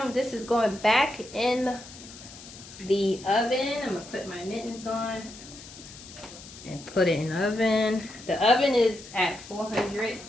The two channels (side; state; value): left; noise; hiss, 17 dB below the sound